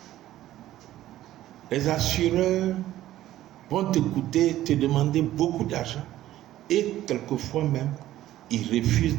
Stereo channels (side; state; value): left; quieter; 14.0 dB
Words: les assureurs vont te demander beaucoup d'argent. Et quelquefois même, ils